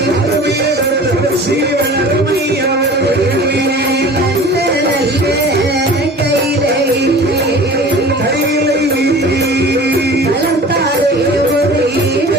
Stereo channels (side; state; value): both; normal; correlation 0.42